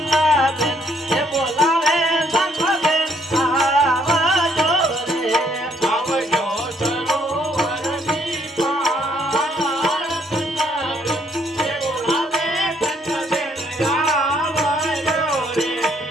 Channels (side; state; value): both; normal; correlation 0.68